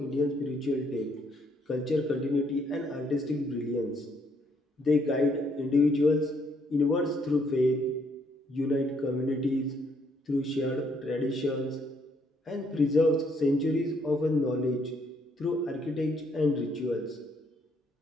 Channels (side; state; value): both; normal; correlation 0.70